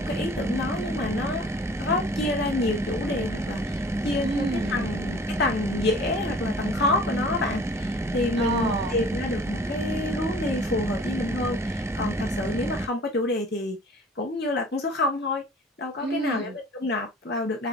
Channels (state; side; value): normal; both; correlation 0.48